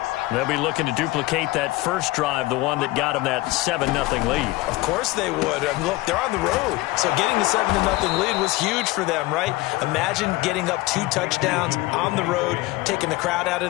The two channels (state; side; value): quieter; right; 19.7 dB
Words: They'll be looking to duplicate that first drive, the one that got them that 7-0 lead. Of course they would. I mean, look, they're on the road. So getting the 7-0 lead was huge for them, right? Imagine getting up 2 touchdowns on the road, taking the crowd out